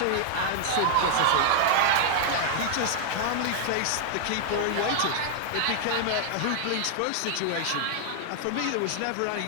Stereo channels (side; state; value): both; different; correlation 0.00